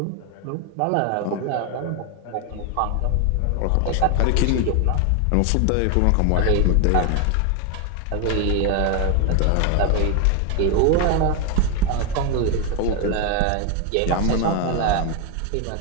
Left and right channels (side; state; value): both; different; correlation 0.01